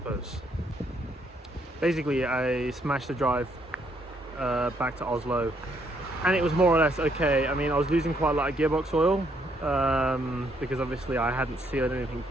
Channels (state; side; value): normal; both; correlation 0.71